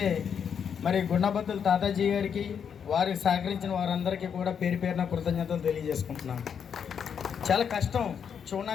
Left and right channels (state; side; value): quieter; right; 7.5 dB